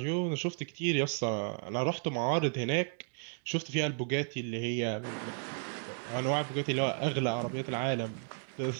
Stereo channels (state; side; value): silent; left; 55 dB below the other